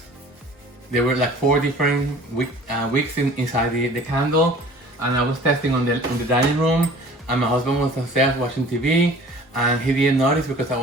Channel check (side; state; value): both; normal; correlation 0.47